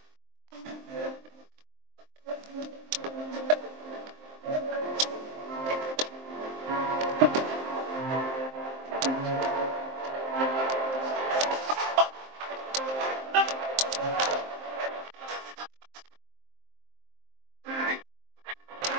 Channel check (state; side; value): late; left; 23 ms